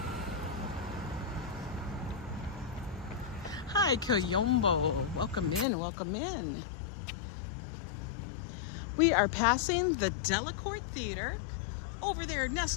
Hi, Kayombo. Welcome in, welcome in. We are passing the Delacorte Theater over there,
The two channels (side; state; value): right; drops out; at 5.7 s